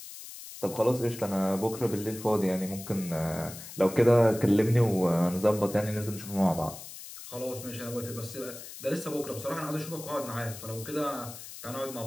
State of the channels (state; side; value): noise; left; hiss, 13 dB below the sound